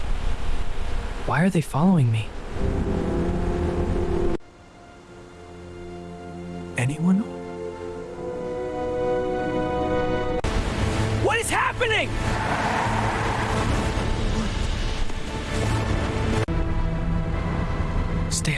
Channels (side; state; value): both; identical; correlation 1.00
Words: Why are they following me? Anyone? What is happening? Stay